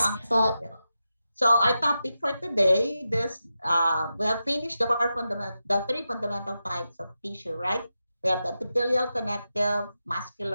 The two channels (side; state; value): both; inverted; correlation -0.90